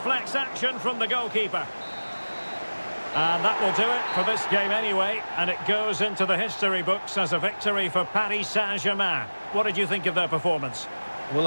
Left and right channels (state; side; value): inverted; both; correlation -1.00